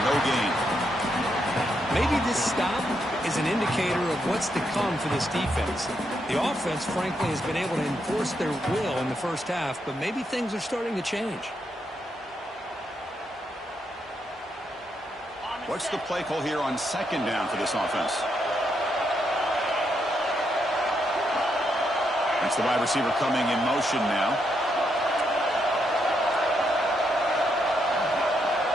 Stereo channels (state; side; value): normal; both; correlation 0.79